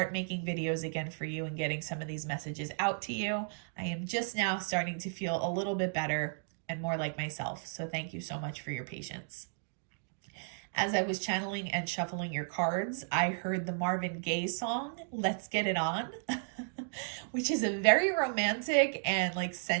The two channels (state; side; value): silent; left; digital silence